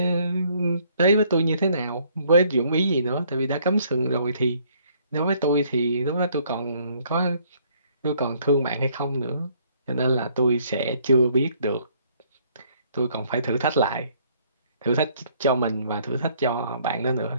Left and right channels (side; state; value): both; inverted; correlation -0.64